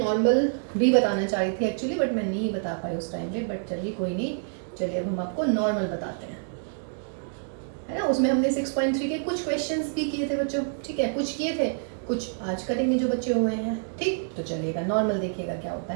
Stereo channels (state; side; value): silent; left; digital silence